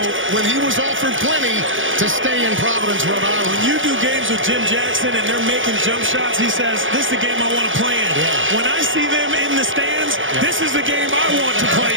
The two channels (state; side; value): late; left; 0.57 ms